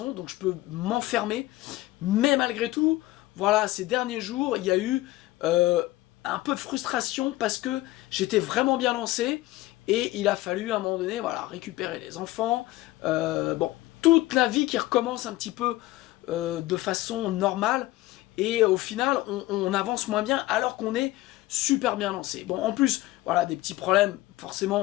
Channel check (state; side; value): quieter; right; 17.7 dB